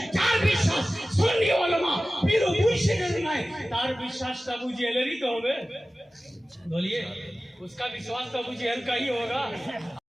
যার বিশ্বাস সুন্নি উলামা পীর ও মুর্শিদের নাই, তার বিশ্বাসটা আবু জাহেলের ही तो হবে। बोलिए उसका विश्वास तो अबू जहल का ही होगा।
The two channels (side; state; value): both; normal; correlation 0.96